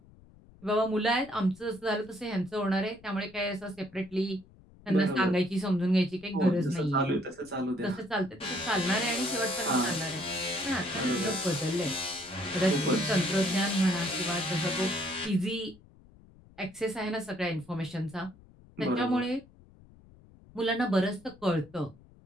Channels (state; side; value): noise; left; rumble, 25 dB below the sound